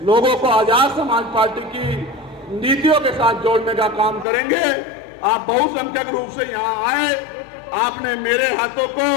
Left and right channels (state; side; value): drops out; right; at 4.2 s